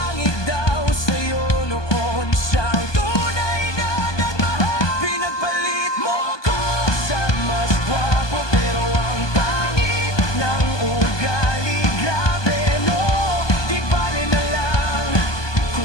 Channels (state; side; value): late; right; 1.2 ms